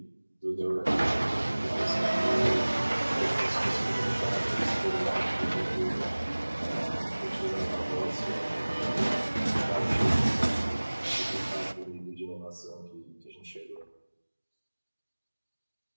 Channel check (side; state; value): both; inverted; correlation -1.00